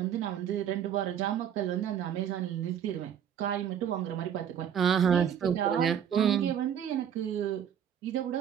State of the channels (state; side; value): quieter; left; 9.0 dB